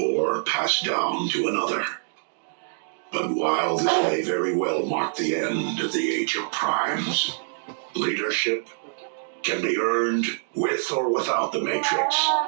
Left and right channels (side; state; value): left; silent; digital silence